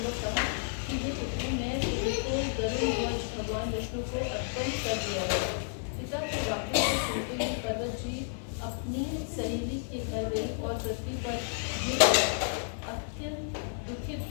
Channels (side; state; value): right; silent; 57 dB below the other